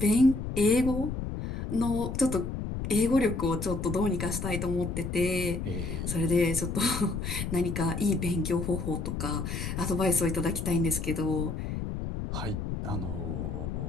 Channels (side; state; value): left; noise; rumble, 4 dB below the sound